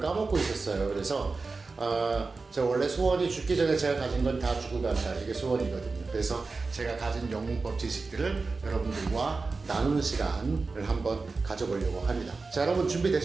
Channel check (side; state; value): left; quieter; 4.0 dB